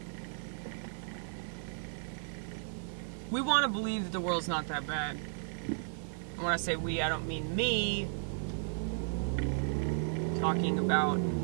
we want to believe that the world's not that bad. And when I say we, I don't mean me. I'm talking about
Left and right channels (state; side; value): silent; left; 55 dB below the other